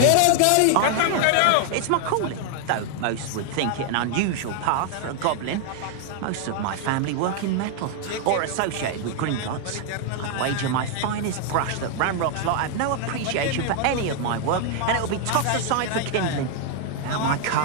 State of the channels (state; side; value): different; both; correlation 0.00